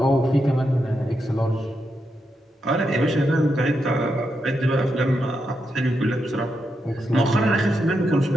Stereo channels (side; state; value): both; normal; correlation 0.84